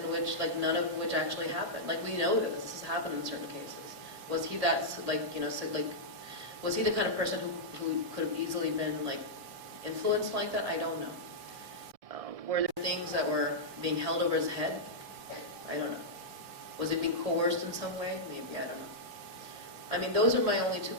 which, none of which actually happened. We know this has happened in certain cases. Was he that, was he the kind of person who could have easily been, influenced like that? I don't know. Were there things that were being held over his head? I don't know. Was it being coerced in some way? Maybe, I don't know. Those are my only two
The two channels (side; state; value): left; late; 1.7 ms